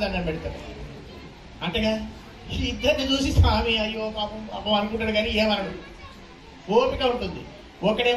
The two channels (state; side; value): identical; both; correlation 1.00